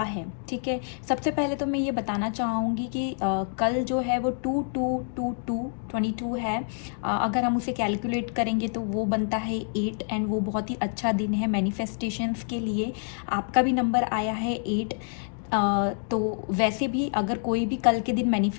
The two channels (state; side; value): silent; right; 60 dB below the other